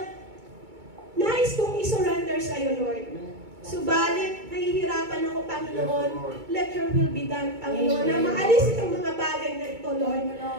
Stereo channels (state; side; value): late; left; 2.2 ms